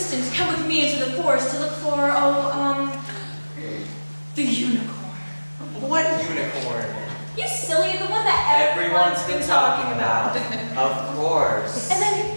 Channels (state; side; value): inverted; both; correlation -1.00